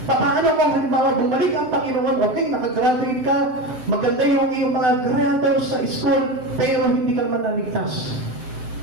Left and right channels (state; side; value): late; left; 7.8 ms